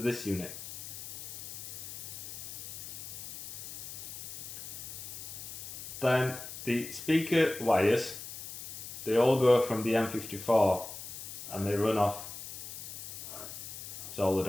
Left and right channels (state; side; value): noise; left; hiss, 10 dB below the sound